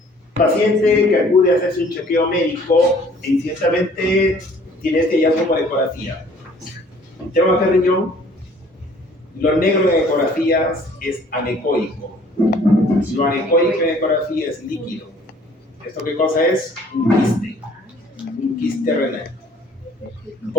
Paciente que acude a hacerse un chequeo médico e incidentalmente tiene este hallazgo por ecografía. Tema de riñón, lo negro en ecografías es anecoico. Lo anecoico en ecografía es líquido. ¿Esto qué cosa es? Un quiste renal.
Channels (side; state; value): both; normal; correlation 0.55